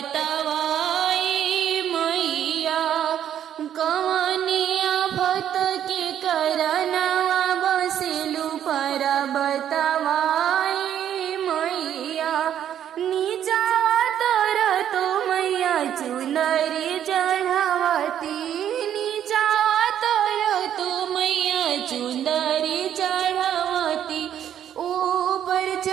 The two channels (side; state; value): left; quieter; 10.1 dB